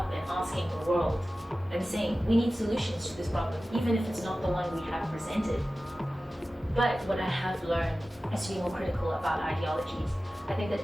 and asking the world and saying, we need solutions to this problem, even if it's not the one we have presented. But what I have learned is to be more critical about ideologies. I think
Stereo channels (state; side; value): normal; both; correlation 0.95